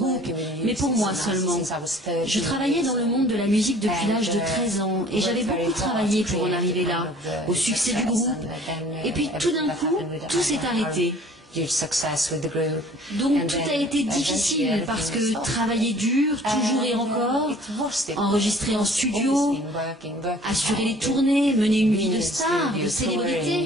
mais pour moi seulement. Je travaillais dans le monde de la musique depuis l'âge de 13 ans et j'avais beaucoup travaillé pour en arriver là, au succès du groupe. Et puis tout d'un coup, tout s'est arrêté. Donc tout a été difficile parce que travailler dur, toujours et encore, enregistrer en studio, assurer les tournées, mener une vie de star, de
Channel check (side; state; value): both; normal; correlation 0.51